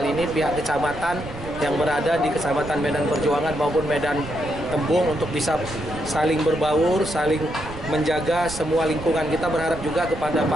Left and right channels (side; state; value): right; noise; rumble, 13 dB below the sound